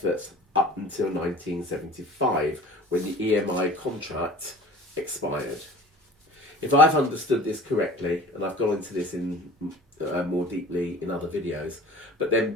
up until 1975, when the EMI contract expired. If I've understood this correctly, and I've gone into this in more deeply in other videos, but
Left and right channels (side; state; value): both; normal; correlation 0.43